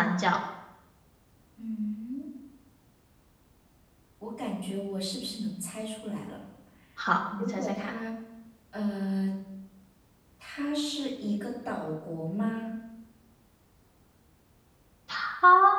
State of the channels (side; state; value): both; identical; correlation 1.00